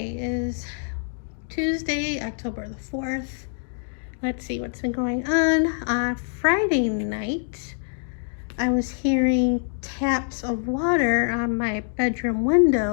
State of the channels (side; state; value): right; silent; digital silence